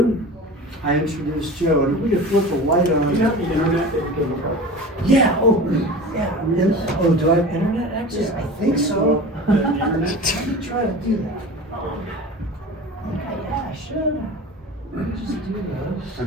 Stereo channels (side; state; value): both; normal; correlation 0.35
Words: I introduce Joe, and if we could flip the light on. You have the internet that you can look up? Yeah, do I have internet access? I think so. The internet? Let me try to do that. Okay, yeah, I should. Let me just do I